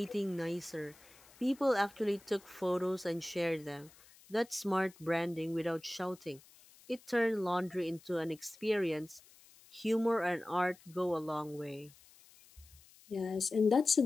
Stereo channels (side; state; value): left; noise; hiss, 25 dB below the sound